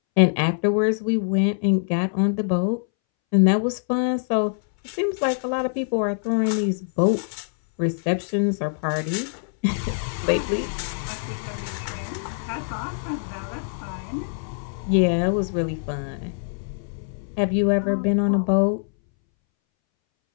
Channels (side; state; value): right; silent; 62 dB below the other